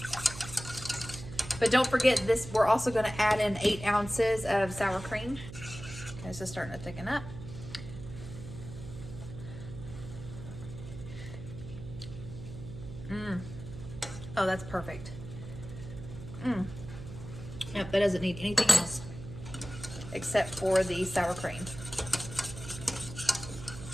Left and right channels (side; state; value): right; noise; hum, 11 dB below the sound